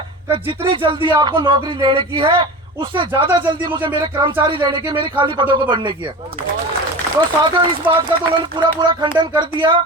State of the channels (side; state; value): both; normal; correlation 0.32